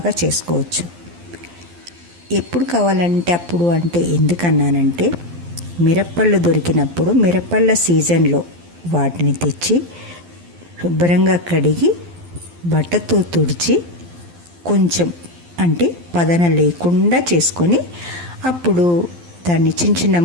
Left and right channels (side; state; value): left; late; 12 ms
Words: చేసుకోవచ్చు. ఎప్పుడు కావాలంటే అప్పుడు అంటే ఎందుకన్నానంటే, మిరప్పళ్ళు దొరికినప్పుడు మిరప్పళ్ళ సీజన్లో వాటిని తెచ్చి శుభ్రంగా కడిగి బట్టతో తుడిచి కొంచెం అంటే పదన లేకుండా చేసుకొని అప్పుడు దాన్ని చిన్న చిన్న